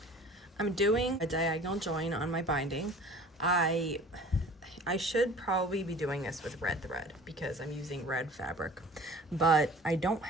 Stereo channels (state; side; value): normal; both; correlation 0.45